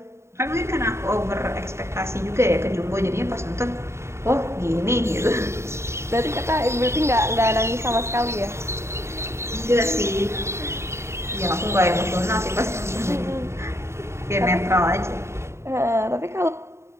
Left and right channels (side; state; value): left; late; 0.13 ms